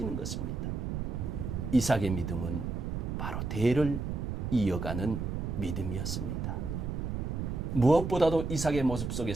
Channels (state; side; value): noise; right; rumble, 3 dB below the sound